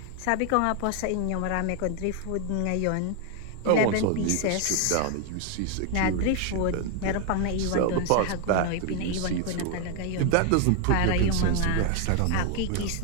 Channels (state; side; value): different; both; correlation 0.01